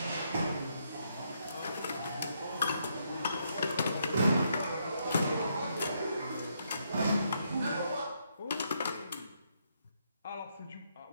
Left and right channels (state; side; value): inverted; both; correlation -0.76